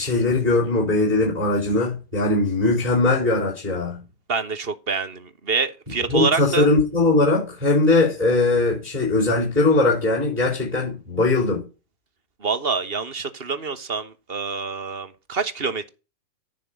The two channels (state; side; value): late; left; 2.8 ms